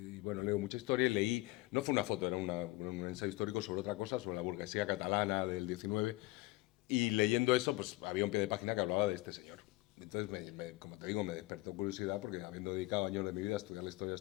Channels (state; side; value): quieter; right; 20.9 dB